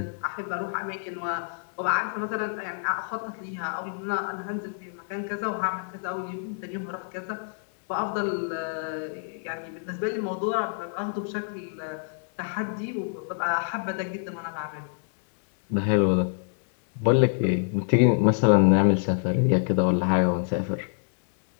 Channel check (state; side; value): silent; right; digital silence